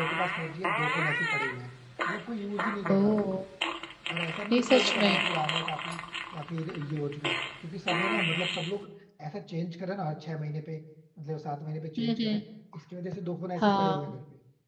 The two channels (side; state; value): both; identical; correlation 1.00